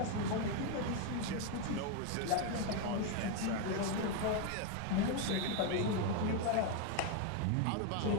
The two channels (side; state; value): both; different; correlation 0.01